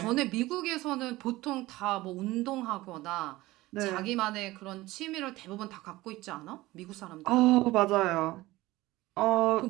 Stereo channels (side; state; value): left; quieter; 18.6 dB